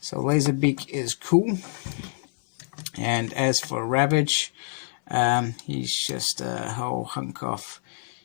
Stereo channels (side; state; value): right; silent; 61 dB below the other